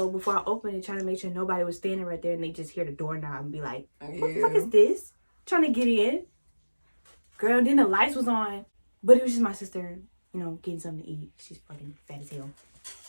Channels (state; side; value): inverted; both; correlation -1.00